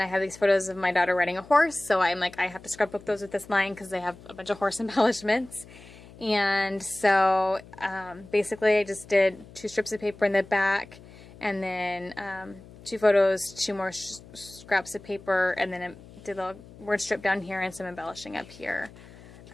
I have these photos of my daughter riding a horse, so I'm like, I have to scrapbook those with this line because they have a bunch of horse embellishments. And so basically I just did 2 strips of paper in the back, and then 2 photos, 2 more scraps of paper, and then I did a word strip down here and some embellishing up here.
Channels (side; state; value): left; noise; hum, 20 dB below the sound